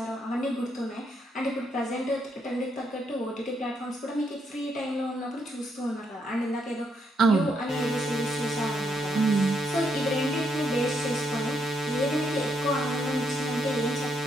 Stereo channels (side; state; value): both; normal; correlation 0.76